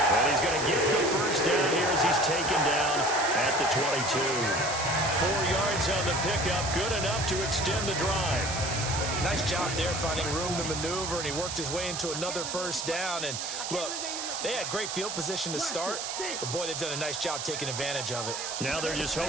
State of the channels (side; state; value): right; noise; hiss, 5 dB below the sound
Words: And he's going to get the 1st down here as he's taken down at the 22. 4 yards on the pickup, good enough to extend the drive. Nice job there finding room to maneuver, and he worked his way into another 1st down. And look, they had great field position to start, but boy, they've done a nice job taking advantage of it. Now they're just